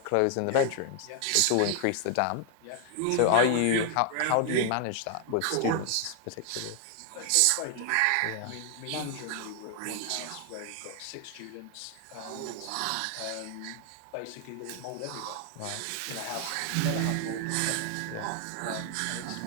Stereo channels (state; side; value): different; both; correlation 0.00